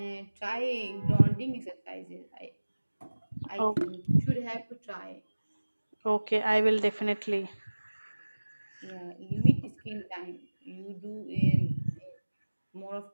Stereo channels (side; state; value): both; inverted; correlation -1.00